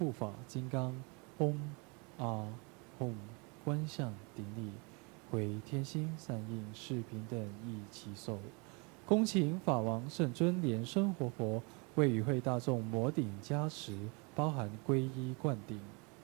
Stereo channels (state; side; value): quieter; left; 31.2 dB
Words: 法金刚，嗡啊吽，观想顶礼，回天心善应。是平等一起手。恭请法王圣尊莲生活佛为与会大众摩顶加持，包含皈依灌顶。